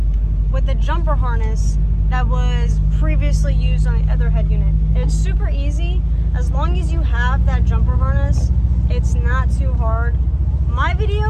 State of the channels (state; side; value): identical; both; correlation 1.00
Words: with the jumper harness that was previously used on the other head unit. It's super easy. As long as you have that jumper harness, it's not too hard. My